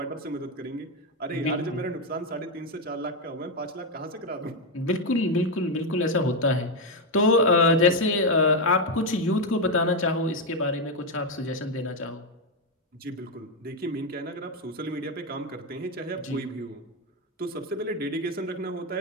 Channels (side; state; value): both; normal; correlation 0.05